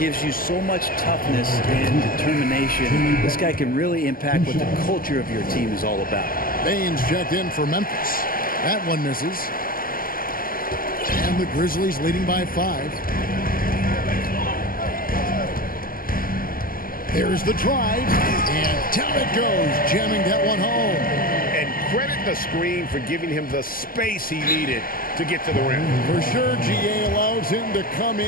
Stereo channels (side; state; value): right; late; 0.42 ms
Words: you so much toughness and determination. This guy can really impact what the culture of your team is all about. Baines checked in for Memphis. That one misses. And the Grizzlies leading by 5. There's the drive. And down it goes, jamming that one home. And credit the screen for giving him the space he needed to get to the rim. For sure, GA allows him to come